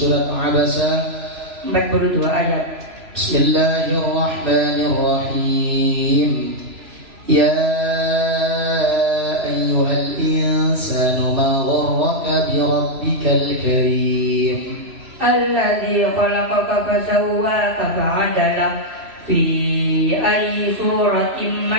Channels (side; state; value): left; late; 3.0 ms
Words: Abasa? 42 ayat. Bismillahirrahmanirrahim. Ya ayyuhal insanu ma gharraka bi rabbikal karim. Alladzi khalaqaka fasawwaka fa'adalak fi ayyi suratin